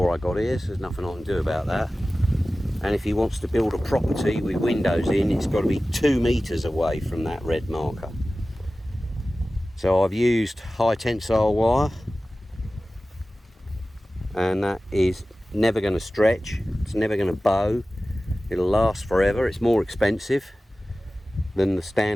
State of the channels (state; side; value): normal; both; correlation 0.96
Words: I got here, so there's nothing I can do about that. And if he wants to build a property with windows in, it's got to be 2 metres away from that red marker. So I've used high tensile wire, and that is never going to stretch, it's never going to bow, it'll last forever. It's more expensive than the